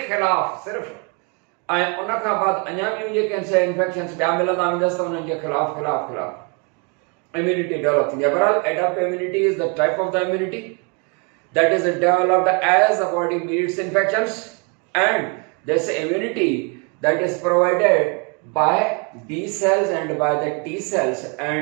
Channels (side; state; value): left; quieter; 34.4 dB